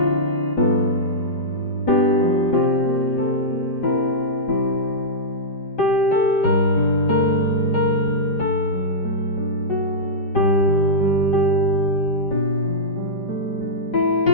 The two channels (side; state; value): right; late; 5.0 ms